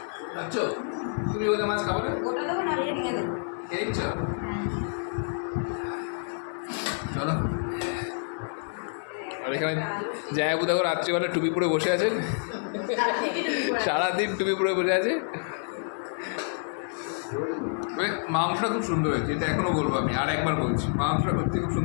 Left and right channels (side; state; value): right; silent; 59 dB below the other